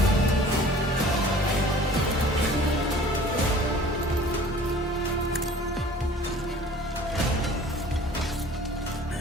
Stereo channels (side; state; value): both; normal; correlation 0.48